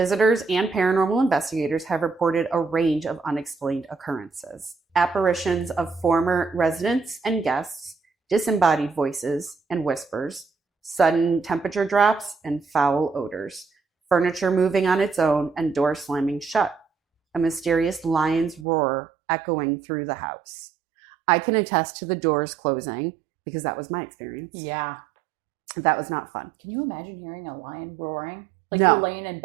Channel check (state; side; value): drops out; left; at 18.7 s